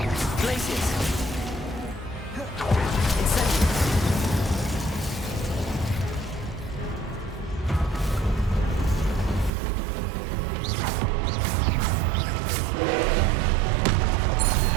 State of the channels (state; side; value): drops out; left; at 9.5 s